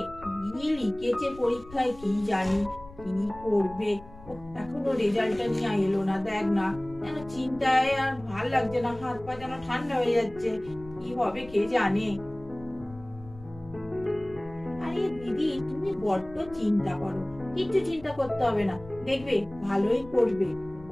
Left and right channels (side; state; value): left; noise; rumble, 19 dB below the sound